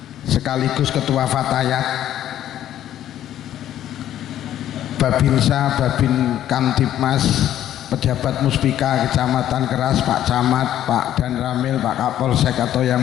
sekaligus Ketua Fatayat, Babinsa, Babin Kamtipmas, pejabat Muspika Kecamatan Keras, Pak Camat, Pak Dan Ramil, Pak Kapolsek atau yang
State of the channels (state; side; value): quieter; right; 11.7 dB